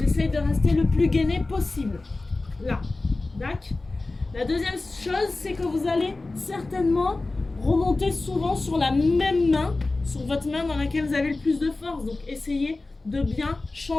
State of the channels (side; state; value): right; quieter; 3.2 dB